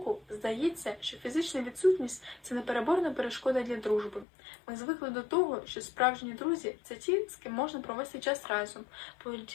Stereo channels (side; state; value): right; drops out; at 4.2 s